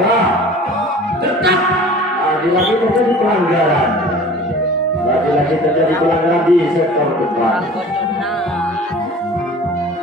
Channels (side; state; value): both; normal; correlation 0.43